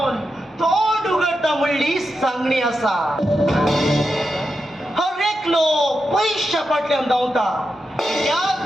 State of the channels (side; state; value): both; normal; correlation 0.88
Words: तोंड उगडटा म्हणली सांगणी आसा हर एकलो पैशा फाटल्यान धांवता कित्याक